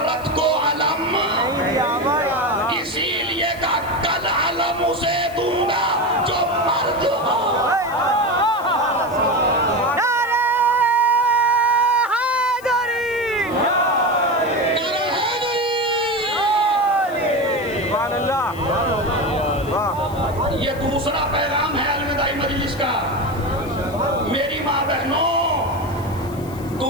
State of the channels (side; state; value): left; noise; hiss, 21 dB below the sound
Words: को अलम, इसीलिए का कल अलम उसे दूंगा जो मर्द हो। ये दूसरा पैगाम है अलविदाई मजलिस का। मेरी माँ बहनों,